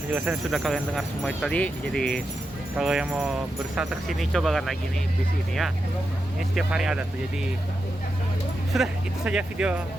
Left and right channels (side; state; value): both; normal; correlation 0.88